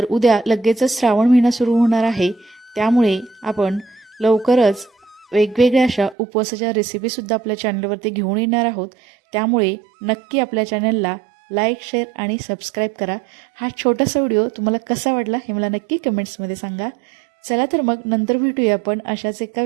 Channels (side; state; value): left; drops out; at 6.2 s